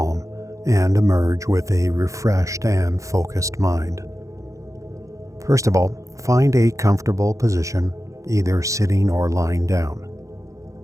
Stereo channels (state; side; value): late; left; 0.15 ms